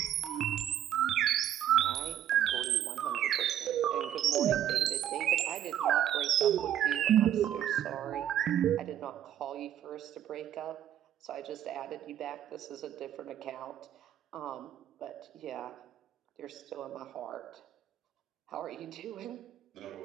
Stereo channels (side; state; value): left; quieter; 10.9 dB